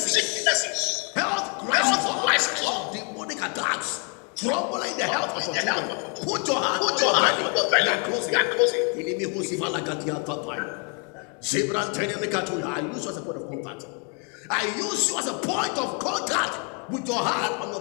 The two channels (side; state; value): right; quieter; 37.1 dB